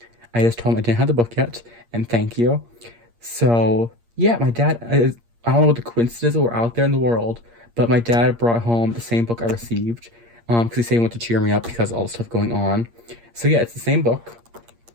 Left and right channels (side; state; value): left; late; 8.6 ms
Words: I just told him I didn't have the book yet, and thank you. So yeah, my dad, I don't know what the coincidences were out there in the world, but my dad brought home the same book I received, because he said he wanted to cheer me up because of all the stuff going on. So yeah, it's the same book,